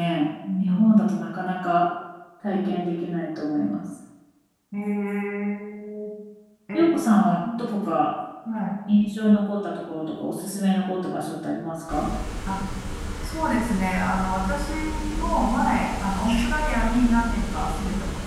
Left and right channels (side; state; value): both; identical; correlation 1.00